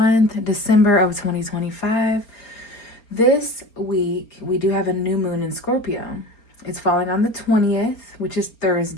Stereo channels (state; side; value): late; right; 4.3 ms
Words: December of 2025. This week, we do have a new moon in Scorpio. It's falling on the 20th, which is